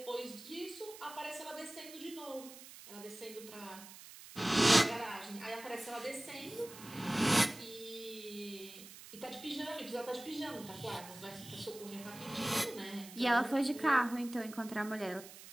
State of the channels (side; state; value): right; noise; hiss, 16 dB below the sound